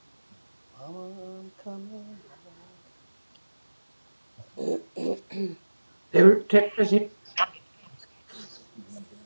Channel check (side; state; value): both; inverted; correlation -1.00